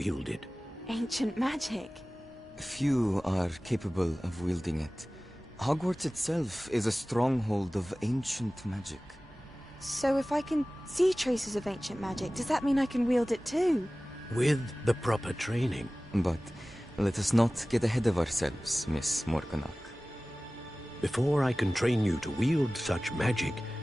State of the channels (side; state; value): both; normal; correlation 0.97